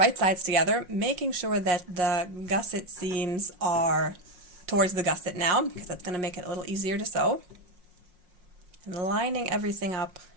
sides together, making sure that the gusset seams are towards the gusset now, because that's going to make it a little easier to sew. And lining everything up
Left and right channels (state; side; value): late; left; 5.5 ms